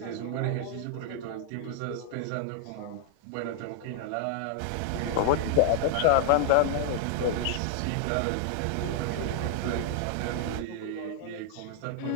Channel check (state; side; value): different; both; correlation 0.00